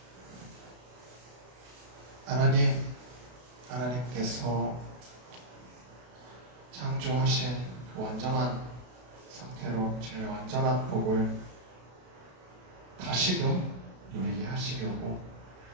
하나님께서 창조하신 완전한 상태로 제일 완전한 복을 다시금 누리게 하시려고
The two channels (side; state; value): left; late; 32 ms